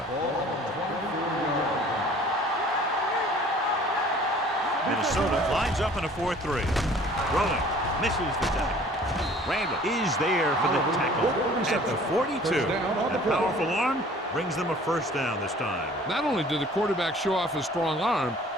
Minnesota lines up in a 4-3. Rolling. Misses the tackle. Randall is there for the tackle at the 42. That powerful arm brings them a first down this time. Not only did the quarterback show off his strong arm,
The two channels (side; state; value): both; normal; correlation 0.51